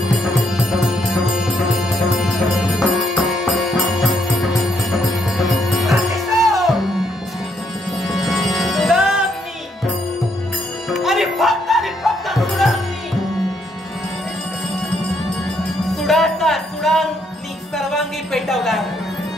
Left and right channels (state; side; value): normal; both; correlation 0.74